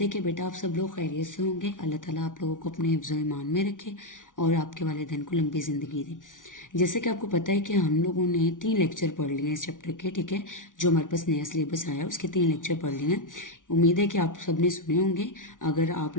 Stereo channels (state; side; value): late; right; 0.88 ms